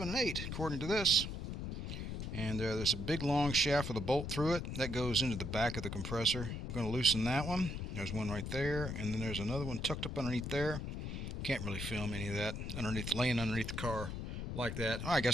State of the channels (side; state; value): left; noise; rumble, 5 dB below the sound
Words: and 8, according to this. And there's a big long shaft with a bolt through it. That goes into the back of the compressor. I'm going to loosen that one. There's one right there. And then there's another one tucked up underneath there. Can't really film any of that laying underneath the car like that. I